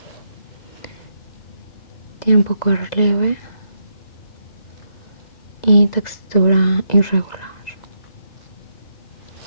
Tiene un poco de relieve y textura irregular.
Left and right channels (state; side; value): late; right; 2.0 ms